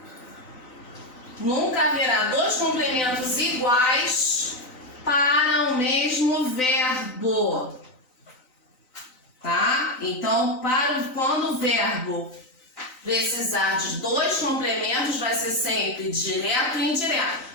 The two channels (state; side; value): late; right; 3.9 ms